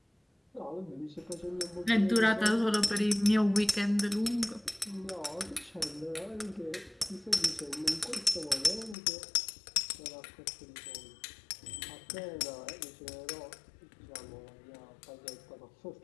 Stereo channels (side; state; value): right; drops out; at 9.0 s